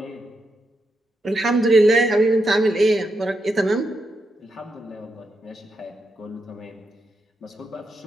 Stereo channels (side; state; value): both; normal; correlation 0.83